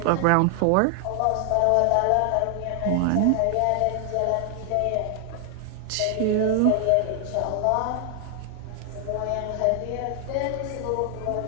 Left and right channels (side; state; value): both; different; correlation 0.00